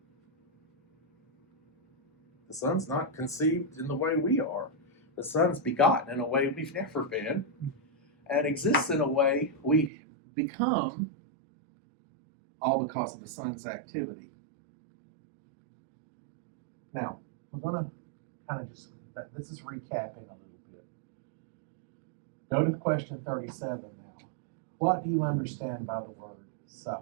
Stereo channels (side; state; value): left; drops out; at 9.9 s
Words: The Son's not conceived in the way we are. The Son's begotten in a way we've never been, and exists in a way we become, all because of the Son's activity. Now, we're going to kind of just, this is recapping a little bit. Go to question 37 now. What do you understand by the word